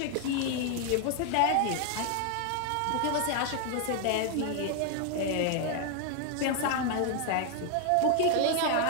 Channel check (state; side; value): different; both; correlation 0.01